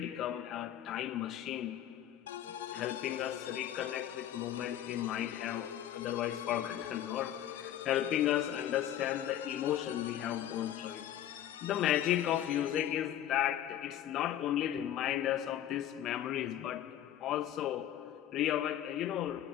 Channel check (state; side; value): quieter; right; 11.6 dB